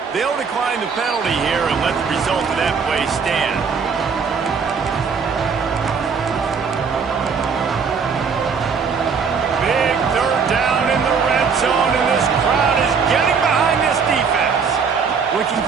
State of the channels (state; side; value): quieter; left; 5.8 dB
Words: They'll decline the penalty here and let the result of that play stand. Big third down in the red zone, and this crowd is getting behind this defense. Looking